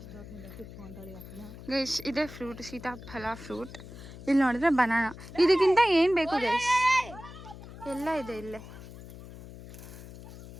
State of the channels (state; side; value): noise; left; hum, 15 dB below the sound